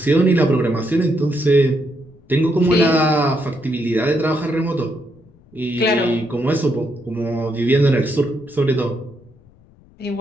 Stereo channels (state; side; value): noise; left; rumble, 28 dB below the sound